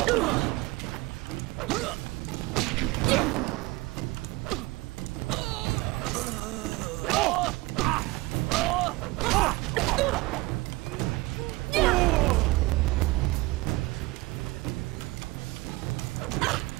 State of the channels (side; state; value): left; quieter; 21.8 dB